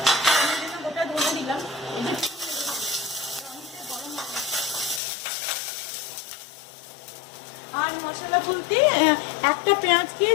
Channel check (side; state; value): right; drops out; at 5.0 s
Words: আমি জন্য গোটা ধনে দিলাম। আর মশলা বলতে একটা পেঁয়াজকে